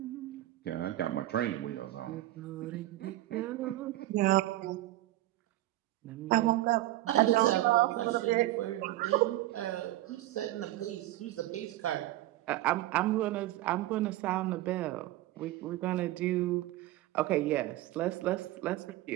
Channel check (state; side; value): quieter; left; 16.2 dB